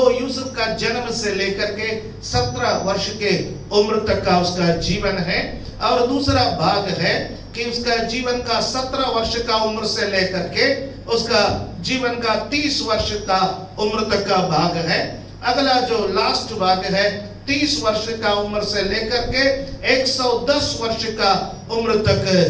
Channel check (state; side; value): identical; both; correlation 1.00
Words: यूसुफ का जन्म से लेकर के 17 वर्ष के उम्र तक का उसका जीवन है। और दूसरा भाग है कि उसका जीवन का 17 वर्ष का उम्र से लेकर के उसका जीवन का 30 वर्ष का उम्र तक का भाग है। अगला जो लास्ट भाग है 30 वर्ष का उम्र से लेकर के 110 वर्ष का उम्र